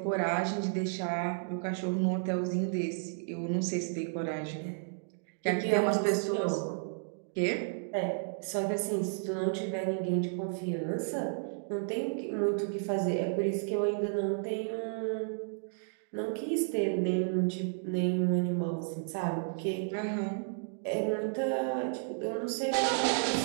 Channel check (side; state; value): left; silent; digital silence